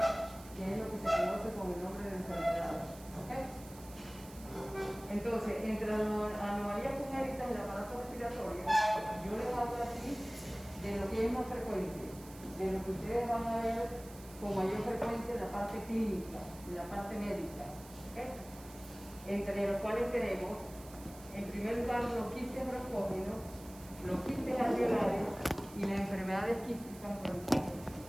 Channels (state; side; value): noise; right; hiss, 19 dB below the sound